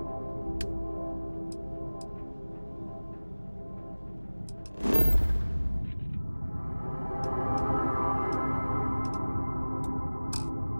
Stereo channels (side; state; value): both; inverted; correlation -1.00